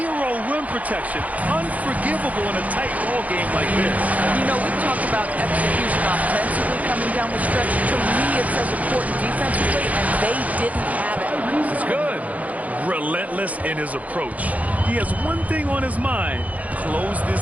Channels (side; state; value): left; late; 0.072 ms